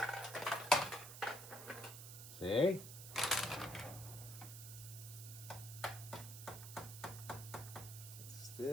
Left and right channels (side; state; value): right; noise; hiss, 11 dB below the sound